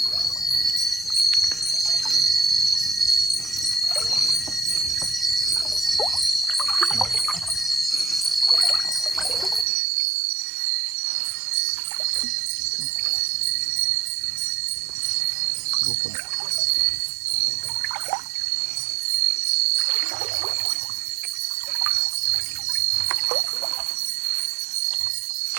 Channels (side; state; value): left; drops out; at 9.7 s